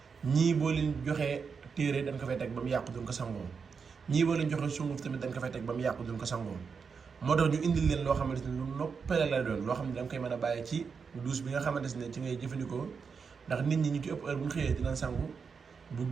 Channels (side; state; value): left; quieter; 5.7 dB